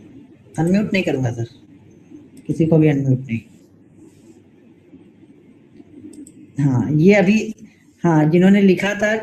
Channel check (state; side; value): identical; both; correlation 1.00